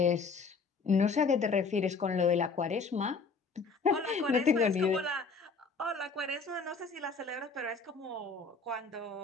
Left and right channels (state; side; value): quieter; right; 4.6 dB